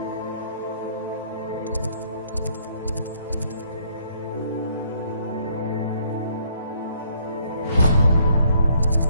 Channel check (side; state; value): both; inverted; correlation -0.66